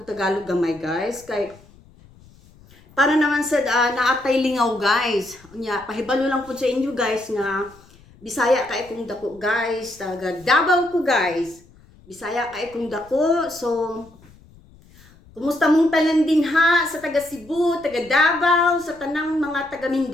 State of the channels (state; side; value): noise; left; rumble, 26 dB below the sound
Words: Tagalog gamay guys kay para naman sa naatay lingaw guys. Unya pahibalo lang pud sa inyo guys nga Bisaya kay kung dako guys, taga Davao ko guys. Bisaya kay kung dako. So kumusta mong tanan din ha sa taga Cebu, taga Davao, sa tanang mga taga